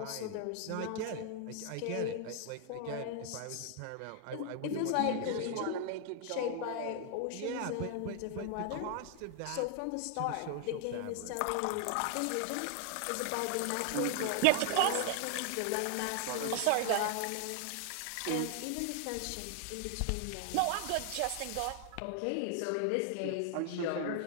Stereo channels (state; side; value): different; both; correlation 0.00